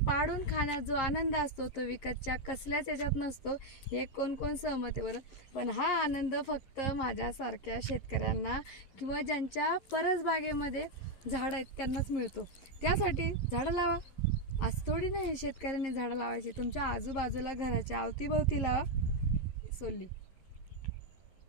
पाडून खाण्यात जो आनंद असतो तो विकतच्या कसल्याच याच्यात नसतो. हे कोण कोण सहमत आहे बरं. पण हा आनंद फक्त माझ्यासारख्या शेतकऱ्यांना किंवा ज्यांच्या परसबागेमध्ये झाडं आहेत त्यांनाच मिळतो. त्यासाठी झाडं लावा. आज थोडी नाही शेतकऱ्यांनी झाडं लावायची, तुमच्या आजूबाजूला घराच्या अवतीभोवती लावा. सोली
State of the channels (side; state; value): right; late; 11 ms